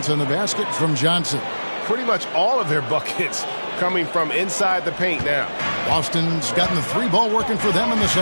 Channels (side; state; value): both; inverted; correlation -1.00